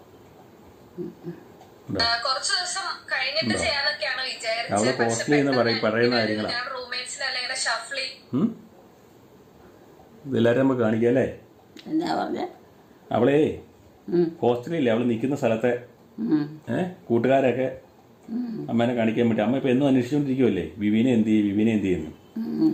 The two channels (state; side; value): identical; both; correlation 1.00